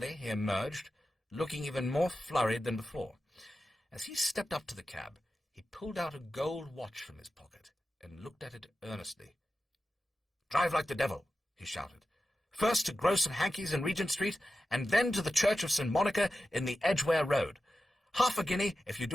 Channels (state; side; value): normal; both; correlation 0.93